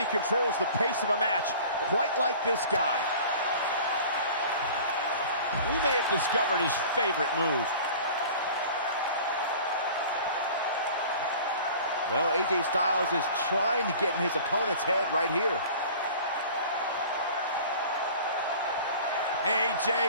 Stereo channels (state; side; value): inverted; both; correlation -0.43